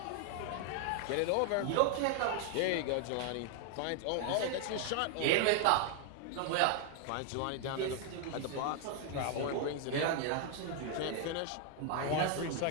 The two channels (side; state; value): both; different; correlation 0.00